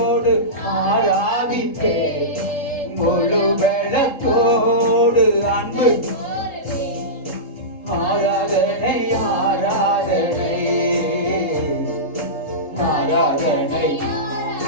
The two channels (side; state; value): right; late; 3.7 ms